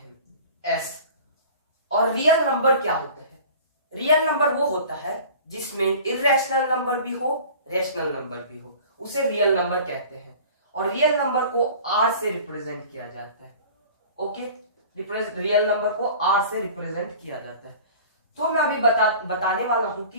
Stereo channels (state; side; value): inverted; both; correlation -0.42